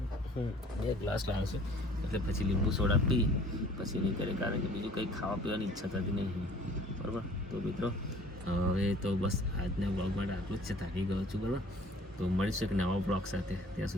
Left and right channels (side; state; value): both; normal; correlation 0.52